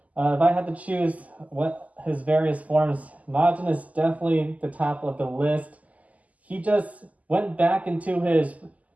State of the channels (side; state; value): left; late; 0.074 ms